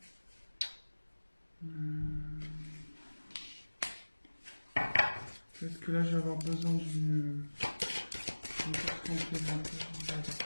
Peut-être que là, je vais avoir besoin d'une carte complémentaire. Voilà.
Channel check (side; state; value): both; inverted; correlation -1.00